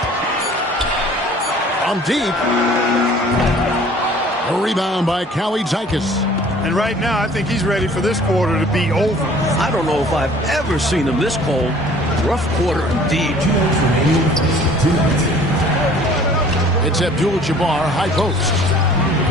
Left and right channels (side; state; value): both; normal; correlation 0.51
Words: From deep. A rebound by Callie Zykas. And right now, I think he's ready for this quarter to be over. I don't know if I've ever seen him this cold. Rough quarter indeed. It's Abdul-Jabbar, high post.